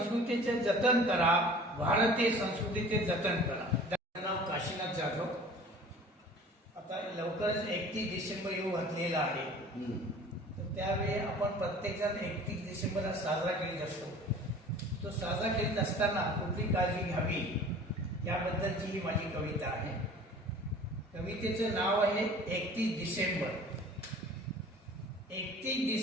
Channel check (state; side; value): normal; both; correlation 0.45